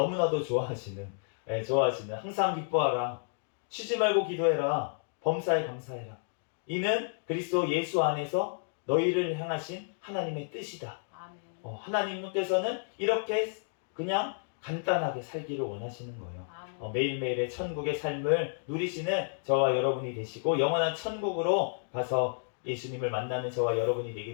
좋아하시는 항상 기뻐하라 쉬지 말고 기도해라 범사에 감사해라 이는 그리스도 예수 안에서 너희를 향하신 하나님의 뜻이다. 아멘. 하나님께서는 이렇게 그냥 간단하게 살기를 원하시는 거예요. 아멘. 매일매일의 천국의 삶을 누리시는 저와 여러분이 되시고 영원한 천국으로 가서 예수님을 만나는 저와 여러분이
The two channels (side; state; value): right; silent; digital silence